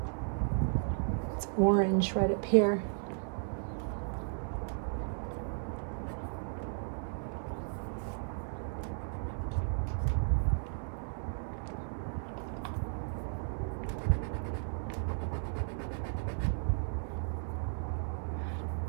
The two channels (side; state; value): left; silent; 55 dB below the other